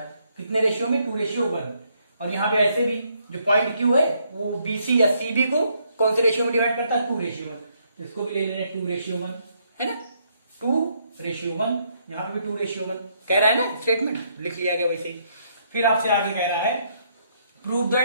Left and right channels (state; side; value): inverted; both; correlation -0.72